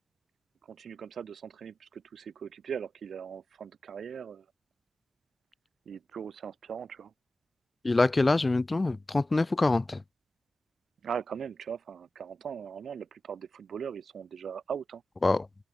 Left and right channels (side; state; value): both; normal; correlation 0.95